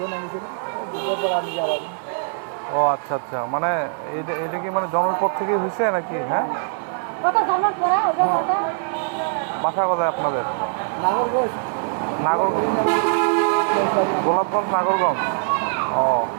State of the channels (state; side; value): silent; left; digital silence